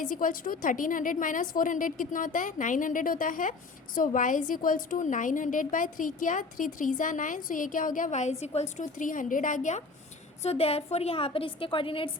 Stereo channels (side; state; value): right; quieter; 3.9 dB